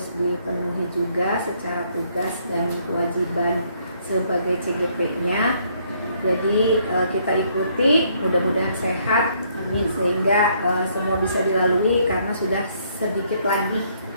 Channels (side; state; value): both; inverted; correlation -0.68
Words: dipenuhi juga secara tugas dan kewajiban sebagai CGP-nya. Jadi kita ikuti, mudah-mudahan sehat, amin, sehingga semua bisa dilalui karena sudah sedikit lagi